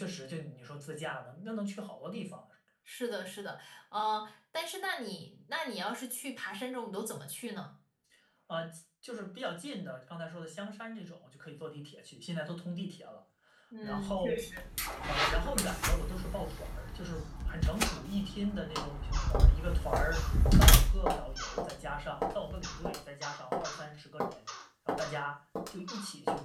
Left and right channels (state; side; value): identical; both; correlation 1.00